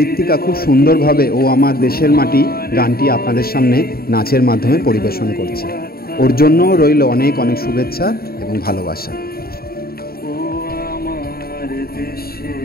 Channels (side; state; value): right; late; 0.44 ms